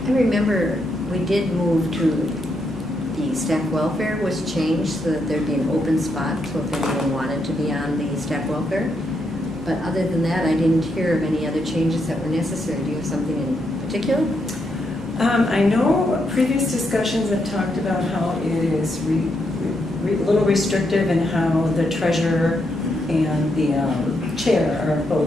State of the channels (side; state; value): both; normal; correlation 0.80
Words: remember we did move to the staff welfare was changed so that there'd be an open spot, so if anyone wanted to be on the staff welfare. But other than that, I didn't hear of any other changes that were necessary. Do you have something in particular? I know previous discussions have talked about how it is a little restrictive in how the treasurer and the chair are